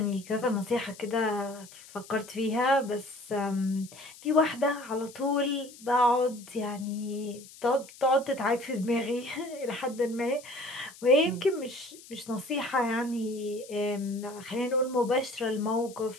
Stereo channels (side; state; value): left; noise; hiss, 19 dB below the sound